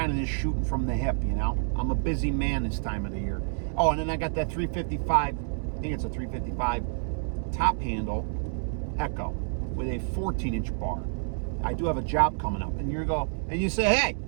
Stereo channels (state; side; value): silent; left; digital silence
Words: of just shooting from the hip, you know. I'm a busy man this time of the year. Oh, and then I got that 355. I think it's a 355 top handle Echo with a 14-inch bar. I do have a job coming up, and you say, hey,